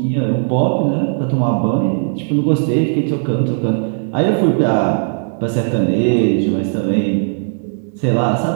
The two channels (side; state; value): left; silent; digital silence